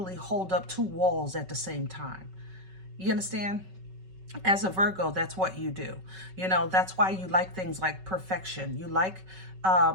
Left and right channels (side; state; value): left; late; 5.3 ms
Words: hold up two walls at the same time. You understand? As a Virgo, that's what you do. That's why you like things like perfection. You like